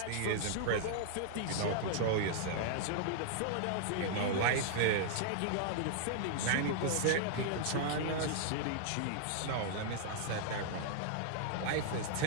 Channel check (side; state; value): both; different; correlation -0.01